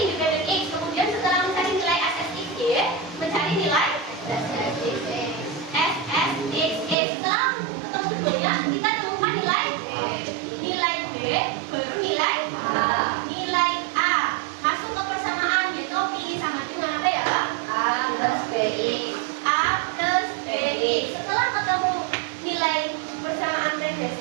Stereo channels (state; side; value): drops out; left; at 7.0 s